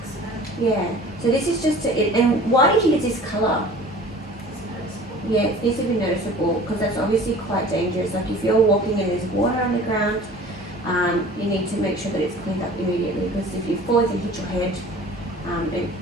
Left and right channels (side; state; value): both; normal; correlation 0.45